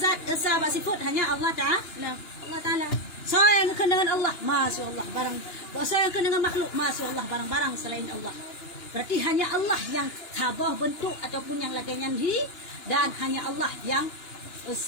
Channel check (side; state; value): right; late; 2.9 ms